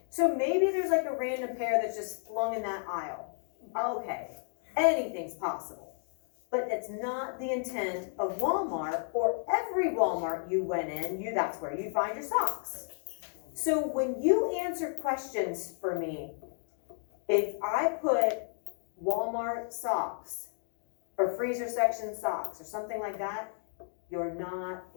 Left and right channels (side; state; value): right; silent; 56 dB below the other